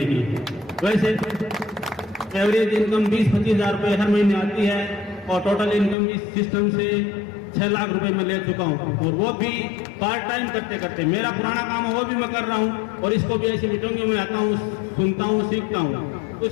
की। वैसे एवरेज इनकम 20-25 हज़ार रुपये हर महीने आती है और टोटल इनकम इस सिस्टम से 6 लाख रुपए मैं ले चुका हूँ, और वो भी पार्ट टाइम करते करते। मेरा पुराना काम है वो भी मैं कर रहा हूँ और इसको भी ऐसी मीटिंगों में आता हूँ, सुनता हूँ, सीखता हूँ। उस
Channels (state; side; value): drops out; right; at 6.0 s